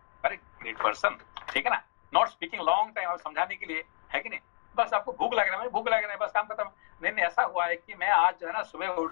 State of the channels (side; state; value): right; silent; digital silence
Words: a great person, ठीक है ना? नॉट स्पीकिंग लॉन्ग टाइम, आप समझाने के लिए, है कि नहीं? बस आपको भूख लग रहा है, भूख लग रहा है, बस काम खत्म। नहीं, ऐसा हुआ है कि मैं आज जो है ना सुबह उठ